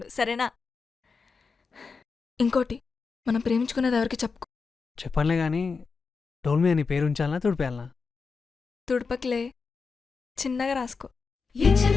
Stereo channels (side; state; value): right; quieter; 4.9 dB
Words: సరేనా? ఇంకోటి, మనం ప్రేమించుకునేది ఎవరికి చెప్పుకో. చెప్పనులే కానీ డోల్ మీద నీ పేరు ఉంచాలనా తుడిపేయాలనా? తుడపకిలే, చిన్నగా రాసుకో.